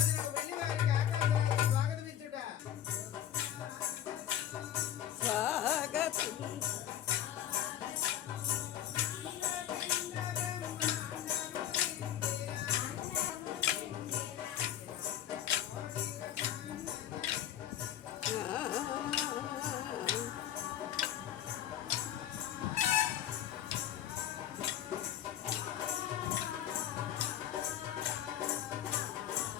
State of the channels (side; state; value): right; quieter; 11.0 dB